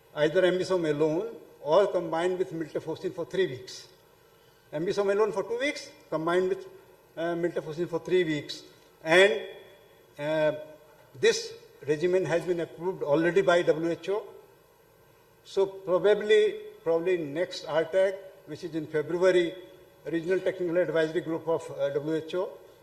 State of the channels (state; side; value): identical; both; correlation 1.00